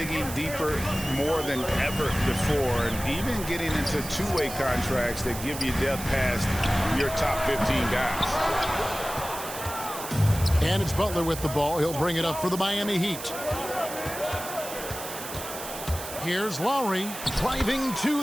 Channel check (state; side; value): noise; right; hiss, 10 dB below the sound